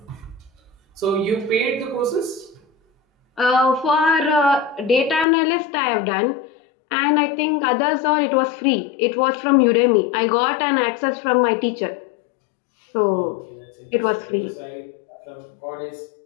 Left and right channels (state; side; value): drops out; right; at 5.2 s